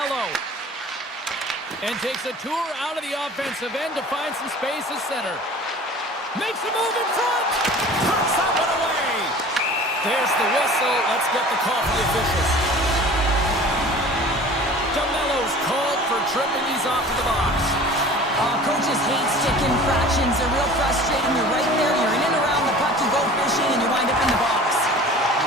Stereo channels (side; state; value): both; normal; correlation 0.43